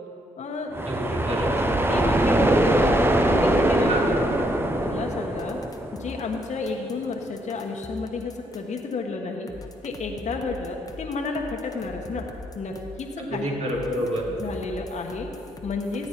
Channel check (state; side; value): normal; both; correlation 0.73